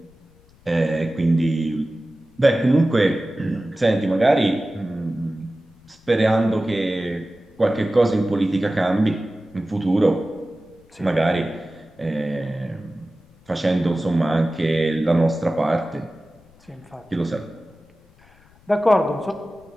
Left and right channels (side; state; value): left; noise; rumble, 29 dB below the sound